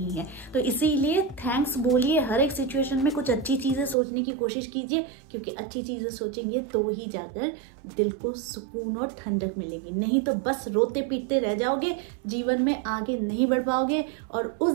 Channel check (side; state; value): left; drops out; at 4.0 s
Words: है। तो इसीलिए थैंक्स बोलिए, हर एक सिचुएशन में कुछ अच्छी चीजें सोचने की कोशिश कीजिए, क्योंकि अच्छी चीजें सोचेंगे तो ही जाकर दिल को सुकून और ठंडक मिलेगी। नहीं तो बस रोते पीटते रह जाओगे, जीवन में आगे नहीं बढ़ पाओगे, और उस